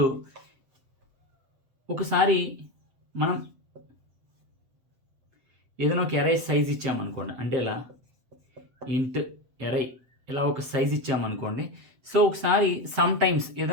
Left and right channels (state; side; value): late; left; 7.9 ms